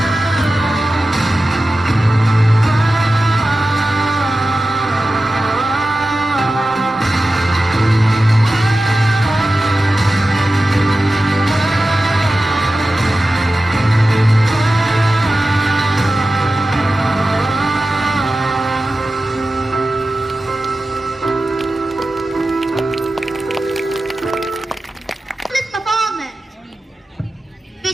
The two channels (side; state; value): both; normal; correlation 0.94